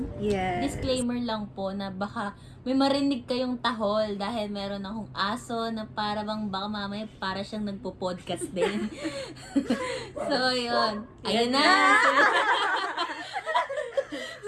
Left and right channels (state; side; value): identical; both; correlation 1.00